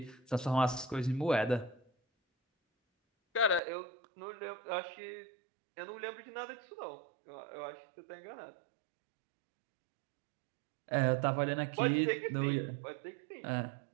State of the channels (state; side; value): drops out; left; at 3.6 s